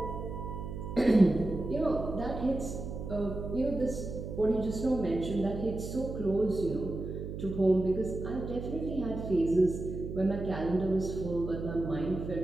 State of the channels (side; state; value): right; noise; hum, 7 dB below the sound